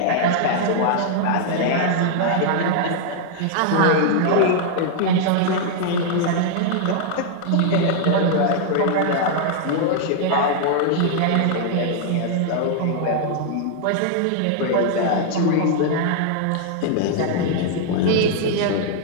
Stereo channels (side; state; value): both; different; correlation 0.00